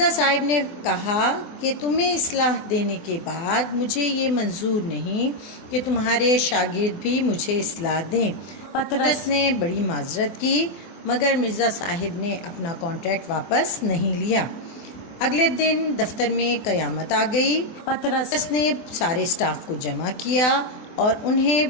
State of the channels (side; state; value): right; late; 24 ms